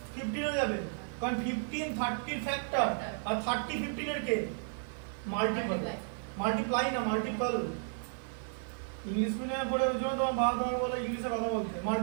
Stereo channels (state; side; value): silent; left; 55 dB below the other